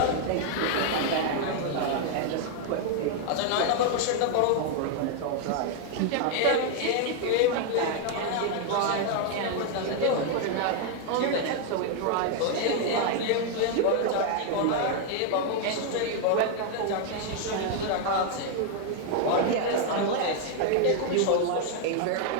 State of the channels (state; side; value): different; both; correlation 0.00